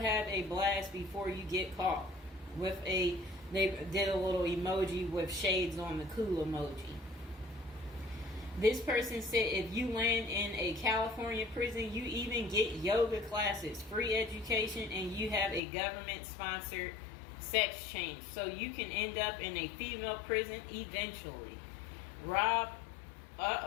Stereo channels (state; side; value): drops out; right; at 15.6 s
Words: a blast before you get caught. They did a little emoji with shades on the cool emoji. This person said if you land in a California prison, you even get yoga classes, free education, and you have a government-sponsored sex change. So you can end up in a female prison eventually. Rob,